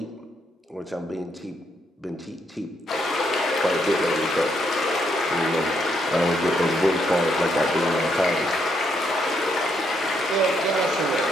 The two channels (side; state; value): both; normal; correlation 0.75